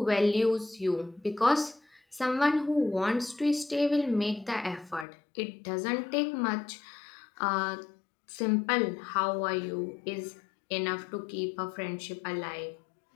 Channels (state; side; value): drops out; right; at 5.1 s